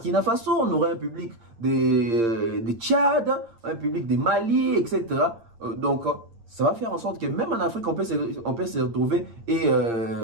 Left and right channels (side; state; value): left; late; 8.7 ms